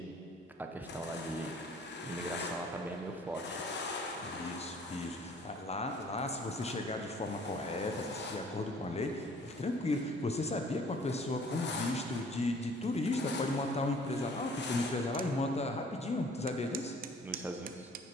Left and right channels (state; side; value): normal; both; correlation 0.55